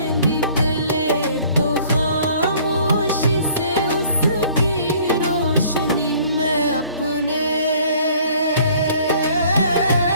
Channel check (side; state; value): both; inverted; correlation -0.56